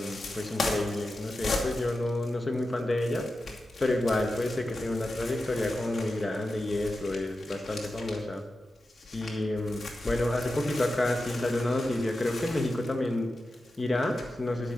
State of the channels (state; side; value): normal; both; correlation 0.91